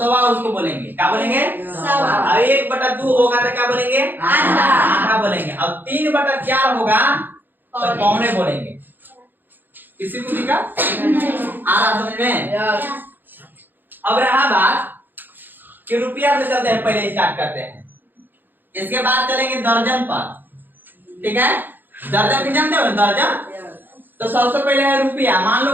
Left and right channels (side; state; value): left; late; 0.091 ms